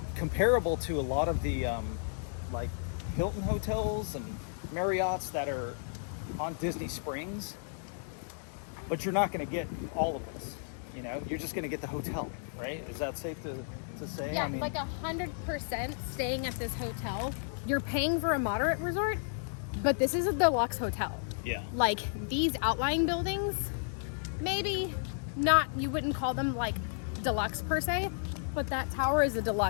comparable to a lot of the like Hilton hotels and Marriotts that are on Disney Springs, but you're not going to get all of this. You know, you're just going to get the hotel, right? Is that safe to say? Yeah, I mean, like 100% staying at this hotel. You're paying for a moderate resort, but this is a deluxe hotel. yeah. Like these outlying buildings, maybe not, you wouldn't call them like deluxe per se, but that tower is a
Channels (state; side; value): silent; right; digital silence